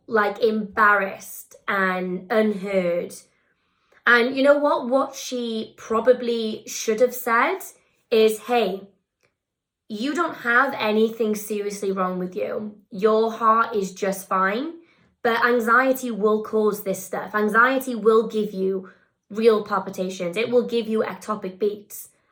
like, embarrassed and unheard. And you know what she probably should have said is, hey, you don't have anything seriously wrong with you. Your heart is just fine, but anxiety will cause this stuff. Anxiety will give you real palpitations. It will give you ectopic beats.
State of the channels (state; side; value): identical; both; correlation 1.00